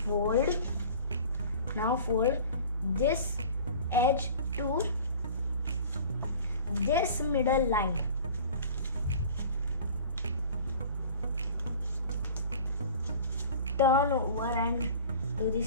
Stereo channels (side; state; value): both; inverted; correlation -0.43